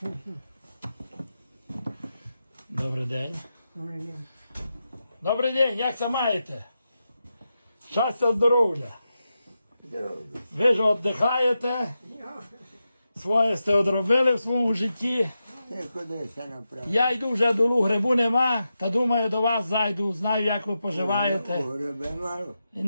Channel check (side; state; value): both; inverted; correlation -0.89